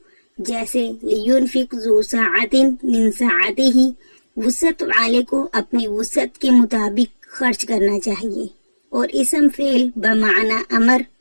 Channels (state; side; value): inverted; both; correlation -1.00